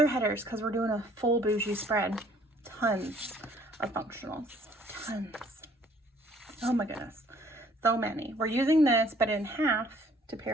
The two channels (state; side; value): normal; both; correlation 0.59